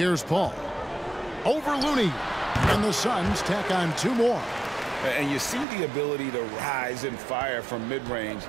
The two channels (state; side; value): drops out; left; at 5.7 s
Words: Paul. Over Looney. And the Suns tack on two more. And you see the ability to rise and fire from mid-range,